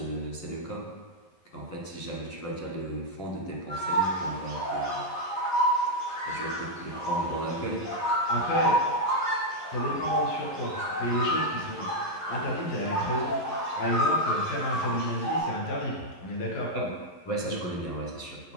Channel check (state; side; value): late; right; 11 ms